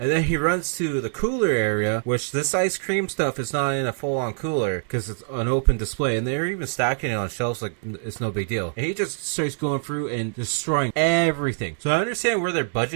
then he runs to the cooler area, which this ice cream stuff is not in a full-on cooler because it's an open display, and they're even stacking it on shelves like it's no big deal. And he just starts going through and destroying everything. So I understand where their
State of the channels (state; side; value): silent; left; digital silence